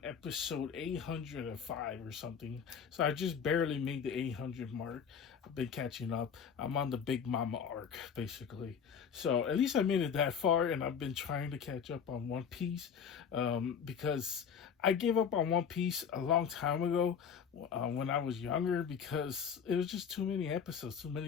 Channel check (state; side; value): quieter; right; 7.1 dB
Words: episode 805 or something. So I just barely made the 800 mark. I've been catching up. I'm on the Big Mama arc, basically. So at least I made it that far, and I've been trying to catch up on One Piece because I gave up on One Piece a long time ago when I was younger because it was just too many episodes